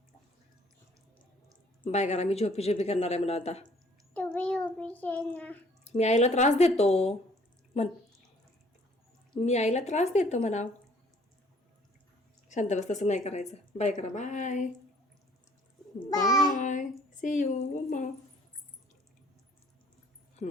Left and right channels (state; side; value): normal; both; correlation 0.58